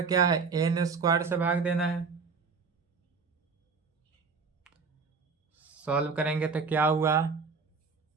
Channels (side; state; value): left; quieter; 5.0 dB